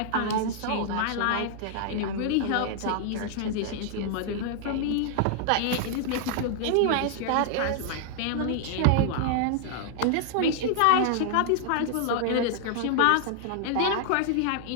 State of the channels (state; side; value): different; both; correlation -0.01